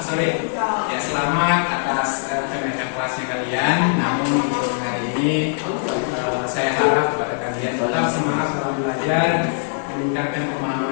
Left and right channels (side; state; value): right; silent; 65 dB below the other